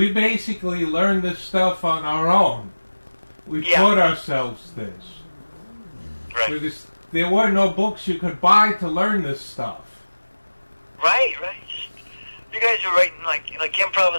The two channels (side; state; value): both; inverted; correlation -1.00